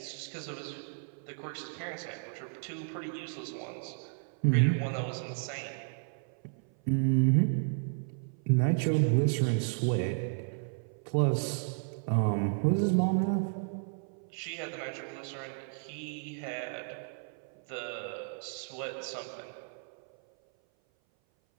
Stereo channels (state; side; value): silent; left; 56 dB below the other